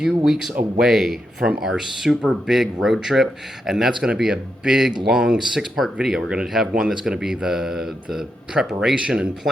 weeks away from our super big road trip. and that's going to be a big, long 6-part video. We're going to have one that's going to be the preparation and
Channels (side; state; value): both; normal; correlation 0.84